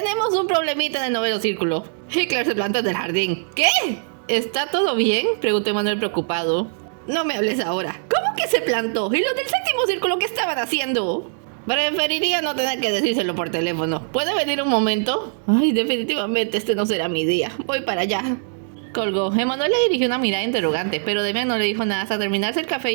un problemita en el noveno círculo. Hitler se plantó en el jardín. ¿Qué? ¿Está todo bien? Preguntó Emanuel preocupado. No me hables ahora. ¿Cómo que se plantó? ¿Y los del séptimo círculo qué estaban haciendo? Preferiría no tener que decírselo por teléfono. ¿Puede venir un momento? Ay, definitivamente este no será mi día. Voy para allá. Colgó. Emanuel le dirigió una mirada interrogante, pero Damian no le dijo nada hasta terminarse el café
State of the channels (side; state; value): left; silent; digital silence